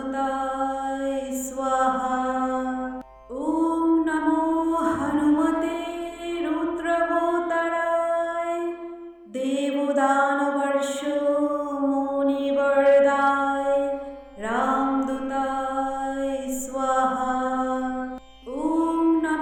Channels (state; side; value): identical; both; correlation 1.00